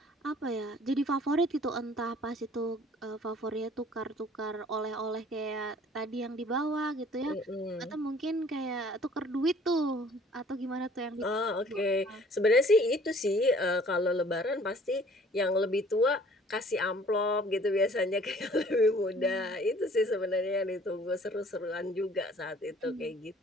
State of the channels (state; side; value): normal; both; correlation 0.54